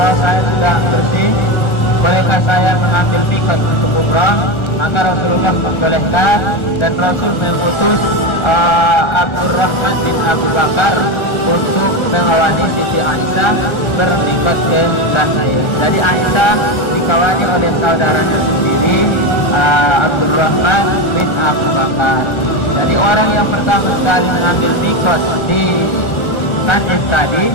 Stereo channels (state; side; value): late; right; 1.3 ms